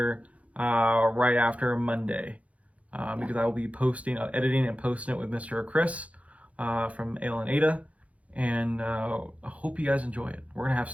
right after Monday. Because I will be editing and posting it with Mr. Chris from Ale and Ada. And I hope you guys enjoy it. We're going to have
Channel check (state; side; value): late; left; 0.066 ms